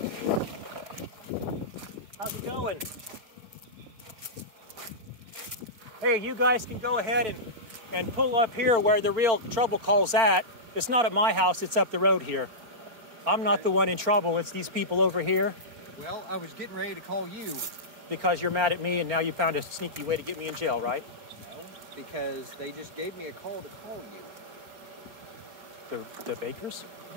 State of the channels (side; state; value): left; late; 4.4 ms